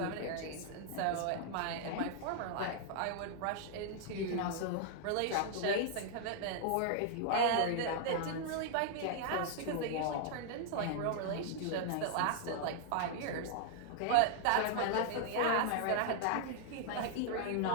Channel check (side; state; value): both; different; correlation -0.01